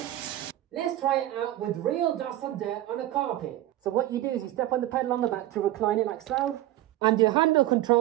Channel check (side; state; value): left; quieter; 14.7 dB